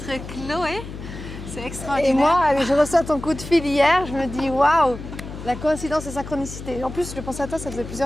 Chloé. C'est extraordinaire. Et moi, je reçois ton coup de fil hier, je me dis waouh, la coïncidence et synchronicité. En plus, je pensais à toi, ça faisait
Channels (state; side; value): noise; left; hum, 11 dB below the sound